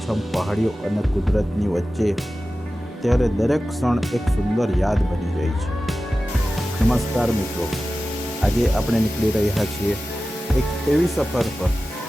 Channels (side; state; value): both; normal; correlation 0.95